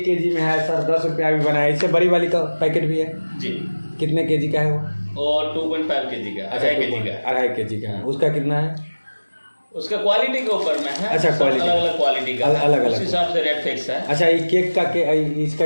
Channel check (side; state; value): both; inverted; correlation -1.00